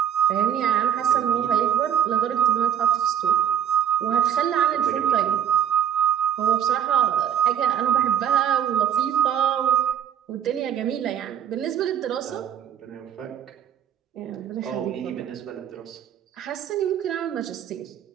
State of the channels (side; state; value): left; quieter; 9.4 dB